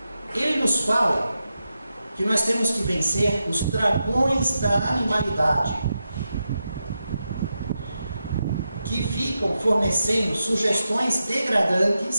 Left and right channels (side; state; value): both; inverted; correlation -0.88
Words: ele nos fala que nós temos que vencer os dragões da animalidade, que ficam fornecendo sugestões